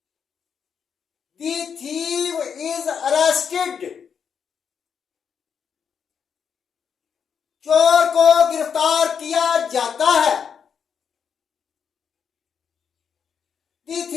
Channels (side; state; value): right; quieter; 7.1 dB